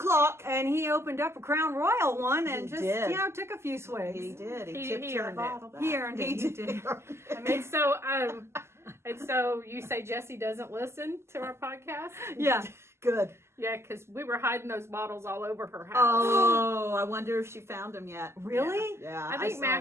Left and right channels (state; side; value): late; left; 0.13 ms